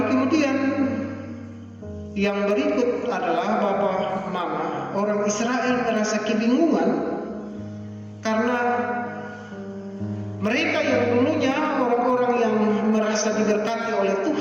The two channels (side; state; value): both; identical; correlation 1.00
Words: kemudian yang berikut adalah Bapak, Mama, orang Israel merasa kebingungan karena mereka yang dulunya orang-orang yang merasa diberkati oleh